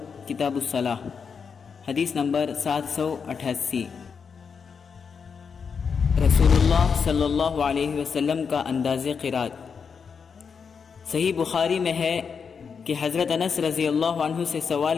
کتاب الصلاح، حدیث نمبر 788. رسول اللہ صلی اللہ علیہ وسلم کا انداز قرات. صحیح بخاری میں ہے کہ حضرت انس رضی اللہ عنہ سے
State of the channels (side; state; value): right; quieter; 6.1 dB